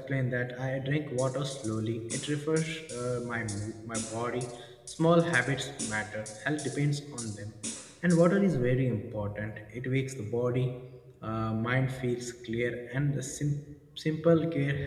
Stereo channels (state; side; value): identical; both; correlation 1.00